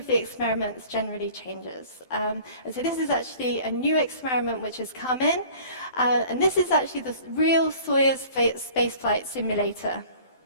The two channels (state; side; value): late; right; 12 ms